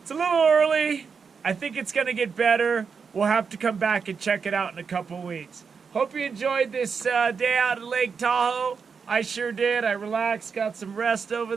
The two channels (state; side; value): quieter; left; 5.8 dB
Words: it's a little early. I think it's going to get better. We'll have to come back and check it out in a couple weeks. Hope you enjoyed this day out at Lake Tahoe. I sure did. I relaxed, got some rest over